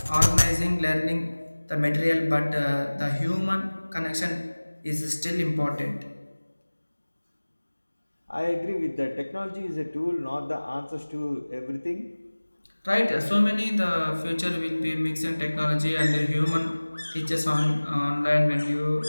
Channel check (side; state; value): both; inverted; correlation -1.00